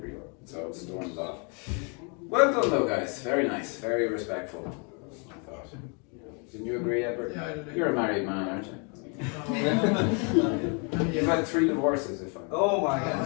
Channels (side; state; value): right; quieter; 36.0 dB